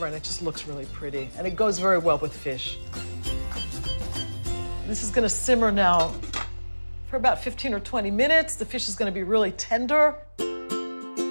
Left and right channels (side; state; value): both; inverted; correlation -1.00